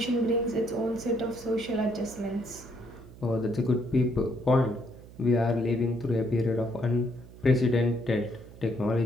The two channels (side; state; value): right; noise; hum, 19 dB below the sound